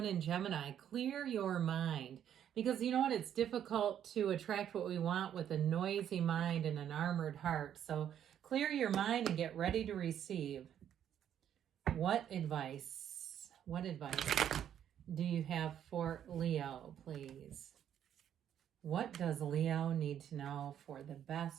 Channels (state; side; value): quieter; left; 9.8 dB